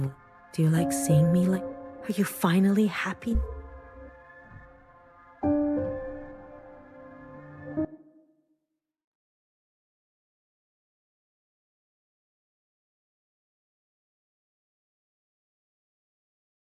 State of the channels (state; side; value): identical; both; correlation 1.00